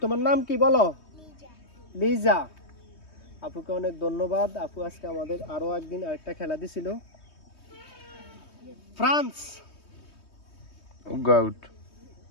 তোমার নাম কি বলো? লিজা। আপুকে অনেক ধন্যবাদ। আপু আজকে আমাদের আরো একদিন আরেকটা খেলা দিছিল। ফ্রান্স গাউট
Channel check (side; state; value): right; late; 3.2 ms